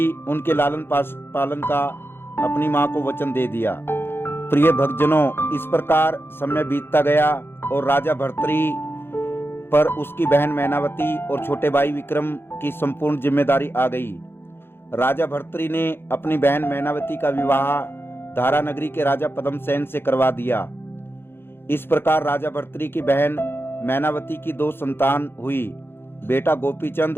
उनके लालन पालन का अपनी मां को वचन दे दिया। प्रिय भक्तजनों, इस प्रकार समय बीतता गया और राजा भर्तृ पर उसकी बहन मैनावती और छोटे भाई विक्रम की संपूर्ण जिम्मेदारी आ गई। राजा भर्तृ ने अपनी बहन मैनावती का विवाह धारा नगरी के राजा पद्मसेन से करवा दिया। इस प्रकार राजा भर्तृ की बहन मैनावती की 2 संतान हुई, बेटा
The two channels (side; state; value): right; late; 0.11 ms